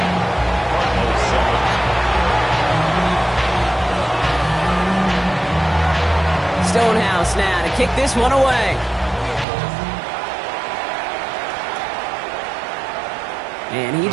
Stonehouse now to kick this one away. And he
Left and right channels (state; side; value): drops out; left; at 9.5 s